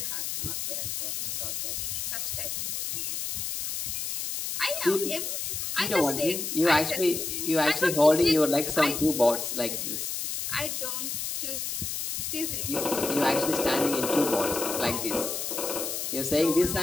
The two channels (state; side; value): noise; left; hiss, 3 dB below the sound